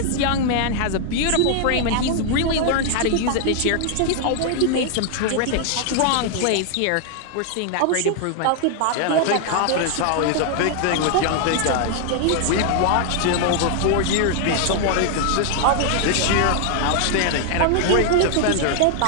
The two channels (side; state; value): both; different; correlation 0.00